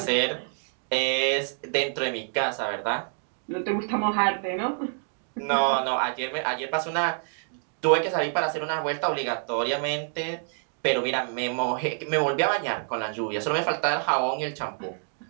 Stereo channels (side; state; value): left; silent; 58 dB below the other